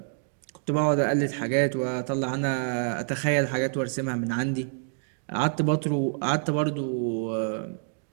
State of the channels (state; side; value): silent; left; digital silence